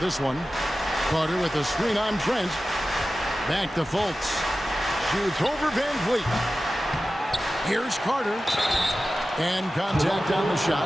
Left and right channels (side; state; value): both; normal; correlation 0.94